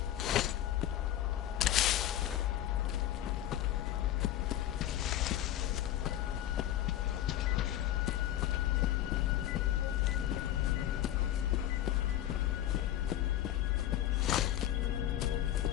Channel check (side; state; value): right; quieter; 12.5 dB